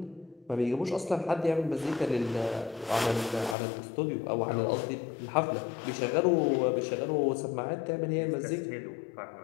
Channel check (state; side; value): drops out; right; at 3.6 s